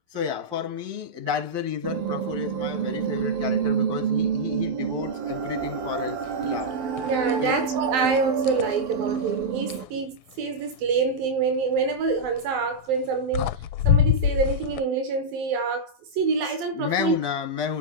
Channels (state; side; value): late; left; 12 ms